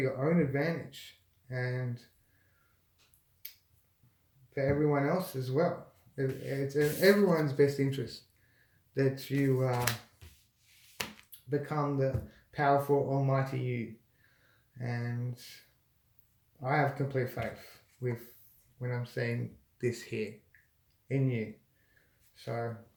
own advantage and for everyone else as well. It's in everyone's best interest that you become the powerful almighty you, and I have complete faith with when I'm saying this here in you. So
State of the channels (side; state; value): both; identical; correlation 1.00